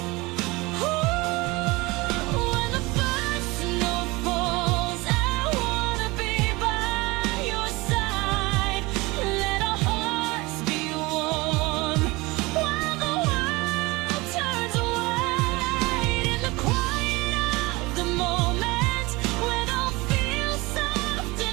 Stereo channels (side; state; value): left; quieter; 23.1 dB